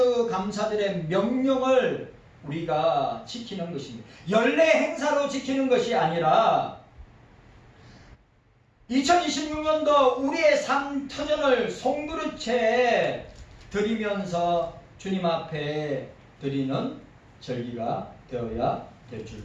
감사들의 명령을 우리가 지키는 것입니다. 연례 행사로 지키는 것이 아니라 2026년도 우리의 삶 터전을 송두리째 드리면서 주님 앞에 드리는 절기가 되어야 될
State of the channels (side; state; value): both; identical; correlation 1.00